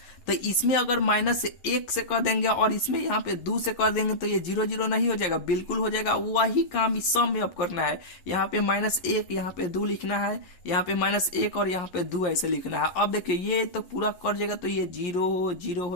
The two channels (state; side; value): late; right; 11 ms